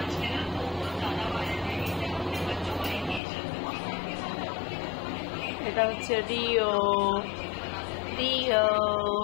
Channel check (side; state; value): right; drops out; at 3.2 s